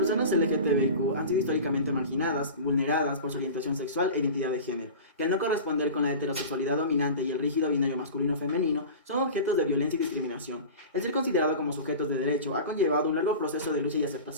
personas LGTBIQ han sido históricamente marginadas, vulneradas por su orientación sexual e identidad de género, que al no corresponder con la heterosexualidad dominante y el rígido binario masculino-femenino, son objetos de violencia y discriminación. El ser considerado como sujetos de derecho ha conllevado un largo proceso de lucha y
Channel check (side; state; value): both; inverted; correlation -0.33